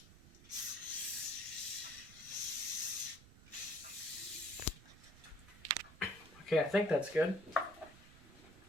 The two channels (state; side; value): noise; right; rumble, 20 dB below the sound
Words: Okay, I think that's good.